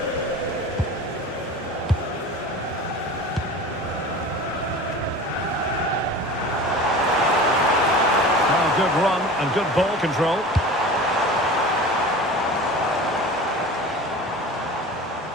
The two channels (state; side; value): normal; both; correlation 0.36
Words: Oh, good run and good ball control.